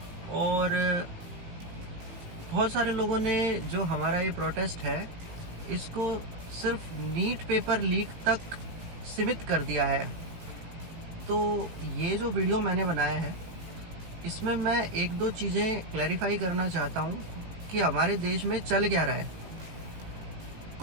और बहुत सारे लोगों ने जो हमारा ये प्रोटेस्ट है इसको सिर्फ नीट पेपर लीक तक सीमित कर दिया है। तो ये जो वीडियो मैंने बनाया है इसमें मैं एक दो चीज़ें क्लैरिफाई करना चाहता हूँ कि हमारे देश में चल क्या रहा है।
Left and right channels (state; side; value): late; left; 18 ms